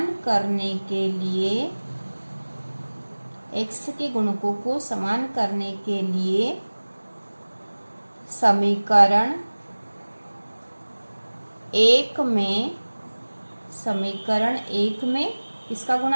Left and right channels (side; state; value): both; inverted; correlation -1.00